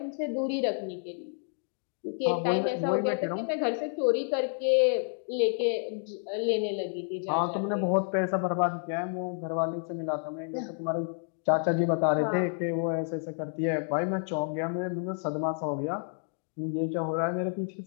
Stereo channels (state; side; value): silent; right; 58 dB below the other